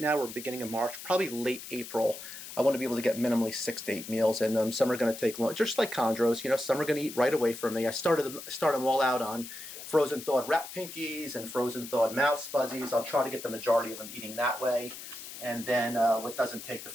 we're beginning of March, probably late April, I want to be able to get minimally 6 to 8 meals in them. Some are going to take long, just like chondros, you know, some are going to eat right away from me. I start them all out on frozen thawed rat pinkies and frozen thawed mouse fuzzies. I'll try to get the majority of them eating that way. And then what doesn't take the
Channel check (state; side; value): noise; left; hiss, 12 dB below the sound